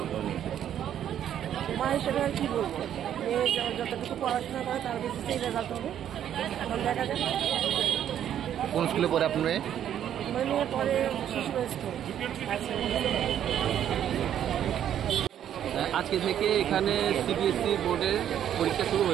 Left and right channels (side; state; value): left; quieter; 10.2 dB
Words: মা হিসেবে আর কি বলবো, মেয়ে যতটুকু পড়াশোনা করে তার বেসিসেই রেজাল্ট হবে। এখন দেখা যাক। কোন স্কুলে পড়ে আপনার মেয়ে? আমার মেয়ে পরে শিশু স্কুল। আজকে থেকে এখানে সিবিএসসি বোর্ডের পরীক্ষা শুরু